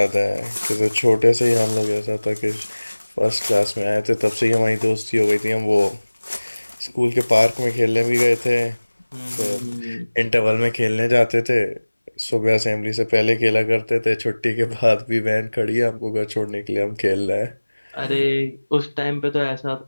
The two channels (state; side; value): inverted; both; correlation -1.00